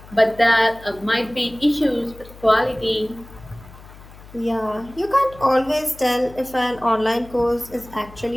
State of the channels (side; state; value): left; noise; hum, 20 dB below the sound